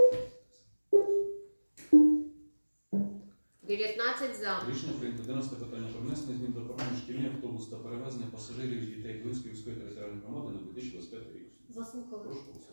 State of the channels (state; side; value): inverted; both; correlation -1.00